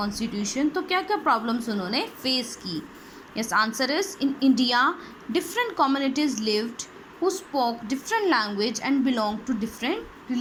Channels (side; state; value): both; identical; correlation 1.00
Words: तो क्या क्या प्रॉब्लम्स उन्होंने फेस की? Yes, answer is in India different communities lived who spoke different language and belong to different